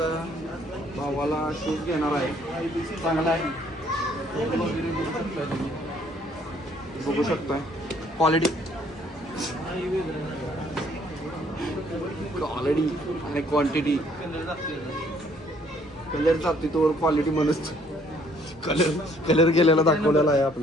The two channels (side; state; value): both; normal; correlation 0.63